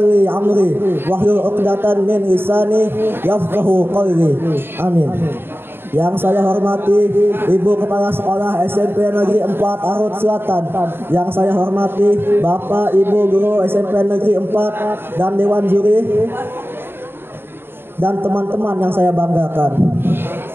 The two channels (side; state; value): left; late; 0.11 ms